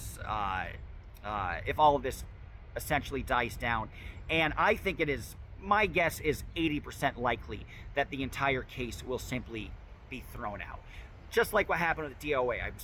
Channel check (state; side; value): identical; both; correlation 1.00